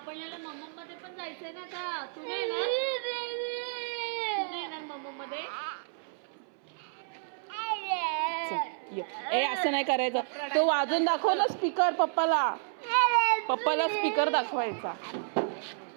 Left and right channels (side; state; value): left; silent; 56 dB below the other